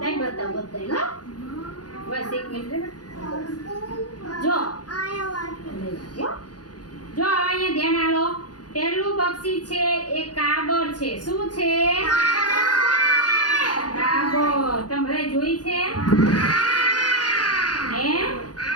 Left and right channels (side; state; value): right; late; 0.69 ms